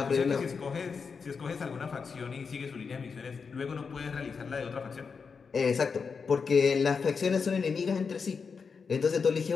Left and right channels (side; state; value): right; quieter; 5.5 dB